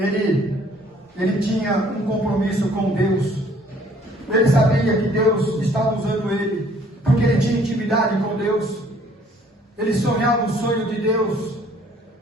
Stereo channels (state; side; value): normal; both; correlation 0.59